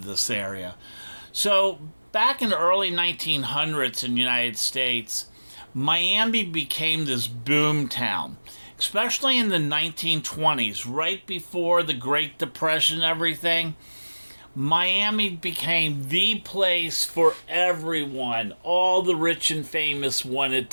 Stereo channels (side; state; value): both; inverted; correlation -1.00